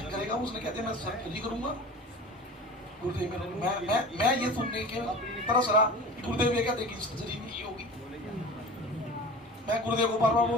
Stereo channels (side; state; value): both; normal; correlation 0.36